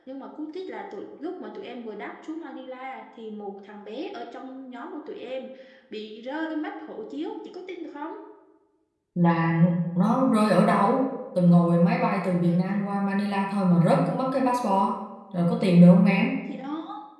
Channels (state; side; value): identical; both; correlation 1.00